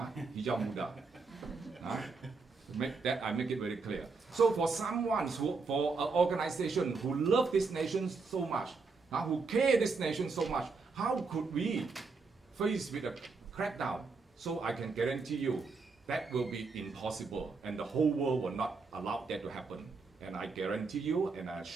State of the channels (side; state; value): left; quieter; 4.4 dB